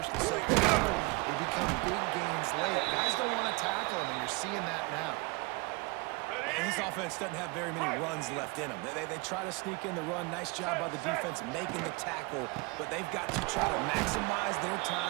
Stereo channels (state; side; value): quieter; left; 27.4 dB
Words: and 2nd quarter, they become big gains late. Guys don't want to tackle him, and you're seeing that now. And this offense doesn't have very many runs left in them. They try to sneak in the run. Nice job by the defense making the tackle, but they've got to try to maximize their